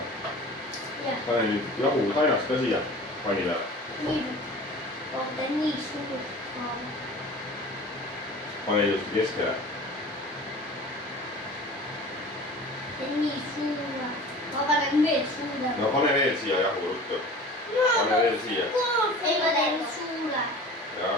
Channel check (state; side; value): normal; both; correlation 0.40